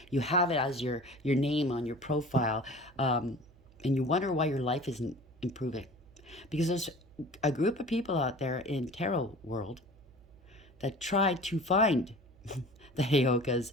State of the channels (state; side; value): noise; right; hum, 26 dB below the sound